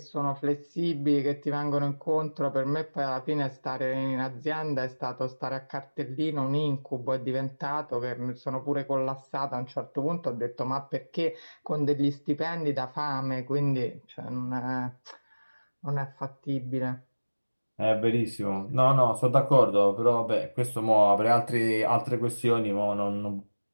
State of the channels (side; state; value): both; inverted; correlation -1.00